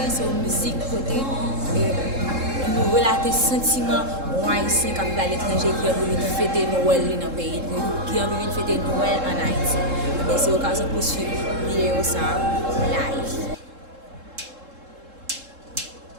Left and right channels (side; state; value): left; late; 3.7 ms